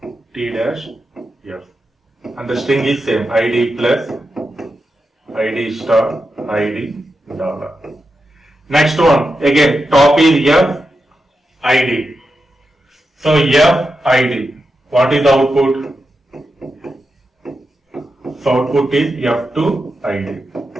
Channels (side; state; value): both; normal; correlation 0.88